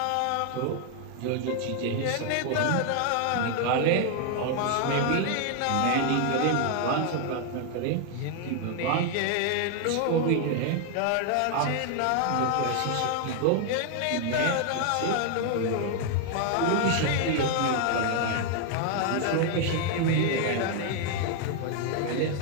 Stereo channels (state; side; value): different; both; correlation 0.00